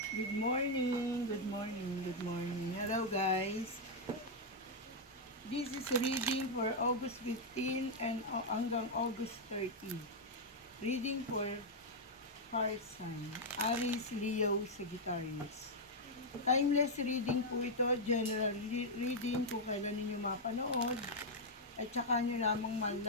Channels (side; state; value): both; normal; correlation -0.03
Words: Good morning, good morning, good morning. Hello guys. This is reading for August 15 and hanggang August 30. Reading for fire sign, Aries, Leo, Sagittarius. Timeless reading po ito, general reading kung kailan ninyo mapanood at saka nyo lamang